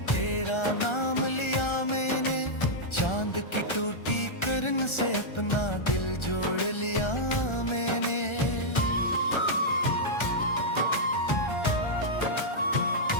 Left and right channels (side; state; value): right; late; 1.4 ms